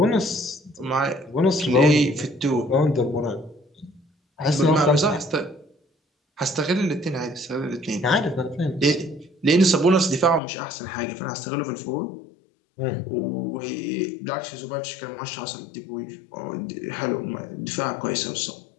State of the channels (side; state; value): right; drops out; at 10.4 s